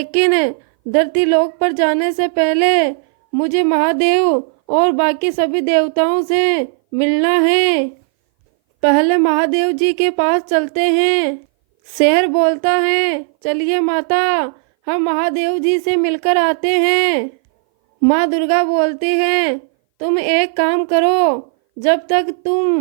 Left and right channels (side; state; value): left; silent; 61 dB below the other